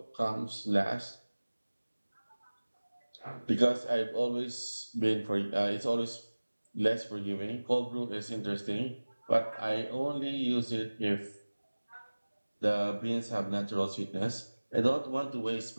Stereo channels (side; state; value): both; inverted; correlation -1.00